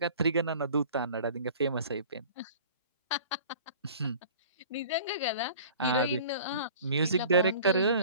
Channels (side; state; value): both; inverted; correlation -0.45